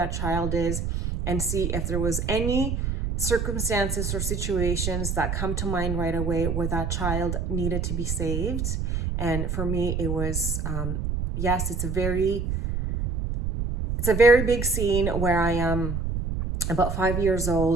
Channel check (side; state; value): right; noise; rumble, 2 dB below the sound